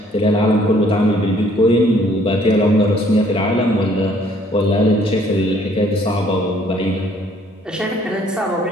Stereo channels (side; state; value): both; normal; correlation 0.61